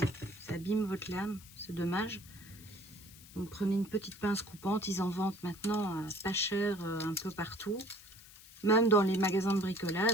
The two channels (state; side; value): noise; left; hiss, 20 dB below the sound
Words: votre lame. C'est dommage. Donc prenez une petite pince coupante. Ils en vendent maintenant pas cher un peu partout. Même dans les magasins de